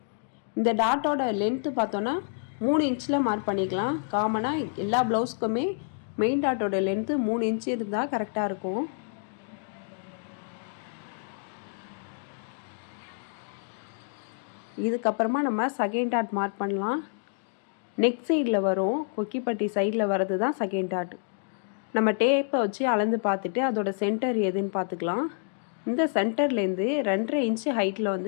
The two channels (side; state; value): right; silent; digital silence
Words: இந்த டாட்டோட லென்த்து பார்த்தோன்னா 3 இன்ச்சில் மார்க் பண்ணிக்கலாம். காமனாக எல்லா ப்ளவுஸ்க்குமே மெயின் டாட்டோட லென்த்து 3 இன்ச்சு இருந்தால் கரெக்டாக இருக்கும். இதுக்கப்புறமா நம்ம செகண்ட் டாட் மார்க் பண்ணலாம். நெக் சைடில் வரும், கொக்கிப்பட்டி சைடில் வர்றது தான் செகண்ட் டாட். நம்ம டேப்பை வச்சு அளந்து பார்த்துட்டு அதோட சென்டர் எதுன்னு பார்த்துக்கலாம். இந்த சென்டர்லேருந்து 2.5 இன்ச்சு ஹைட்டில்